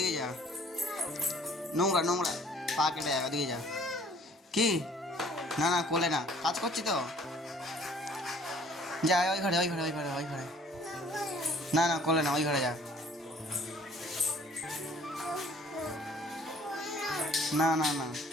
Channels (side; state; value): both; normal; correlation 0.56